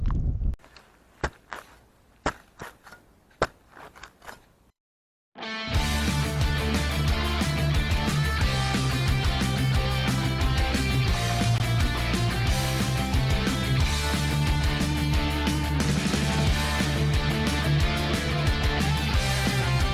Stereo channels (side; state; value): both; identical; correlation 1.00